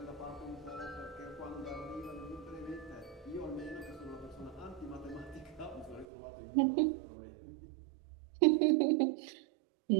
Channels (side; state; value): left; drops out; at 6.1 s